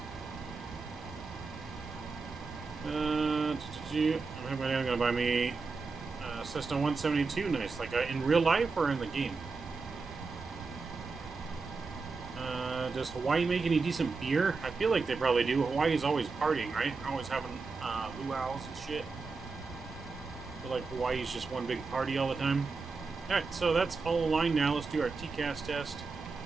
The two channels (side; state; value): left; quieter; 4.3 dB